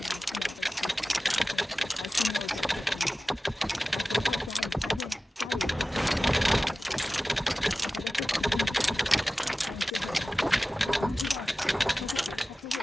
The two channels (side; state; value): both; normal; correlation 0.96